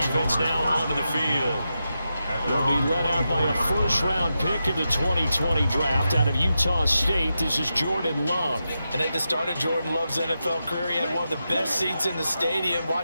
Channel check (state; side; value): inverted; both; correlation -0.89